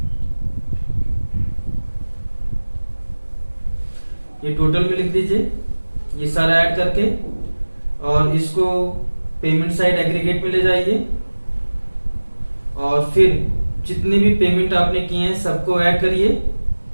ये टोटल में लिख दीजिए ये सारा ऐड करके, और इसको पेमेंट साइड एग्रीगेट में ले जाइए और फिर जितने भी पेमेंट आपने किए हैं सबको ऐड करिए।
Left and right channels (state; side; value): inverted; both; correlation -1.00